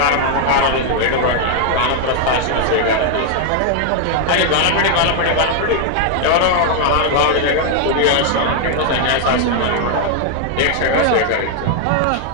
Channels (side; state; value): both; different; correlation 0.00